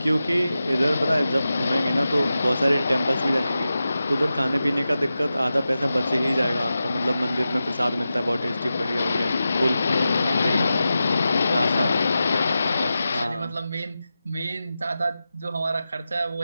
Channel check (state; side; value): inverted; both; correlation -0.92